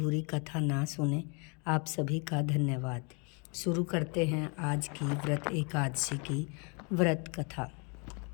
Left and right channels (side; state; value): right; quieter; 34.0 dB